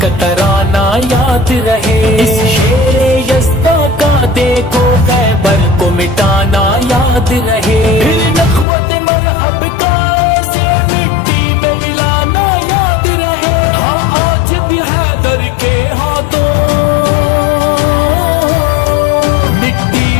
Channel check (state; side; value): drops out; right; at 8.7 s